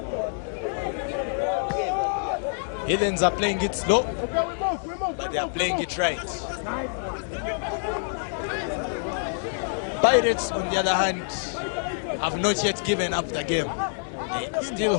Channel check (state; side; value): silent; right; digital silence